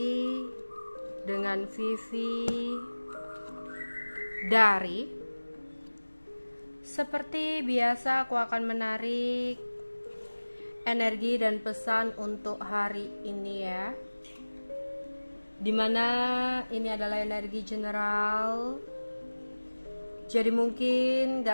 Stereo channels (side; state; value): both; inverted; correlation -1.00